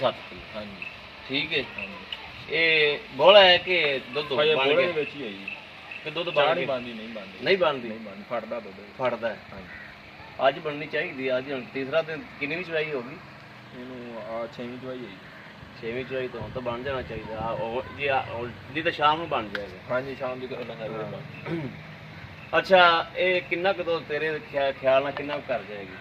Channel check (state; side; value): identical; both; correlation 1.00